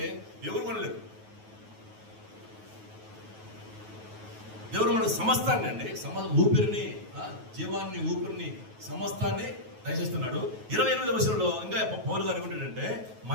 ఎవరు కొనలేరు. దేవుడు మనకు సమస్తాన్ని అండి, ఊపిరిని, జీవాన్ని, ఊపిరిని, సమస్తాన్ని దయచేస్తున్నాడు. 28వ వచనంలో ఇంకా పౌలు గారు ఏమంటాడంటే,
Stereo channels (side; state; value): left; late; 9.3 ms